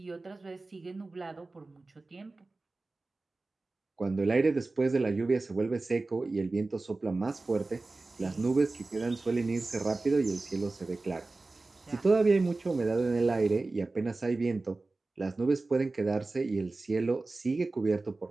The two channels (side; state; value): left; quieter; 3.4 dB